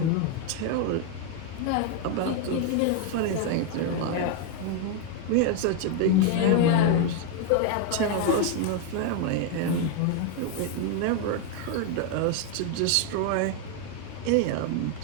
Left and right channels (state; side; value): different; both; correlation 0.01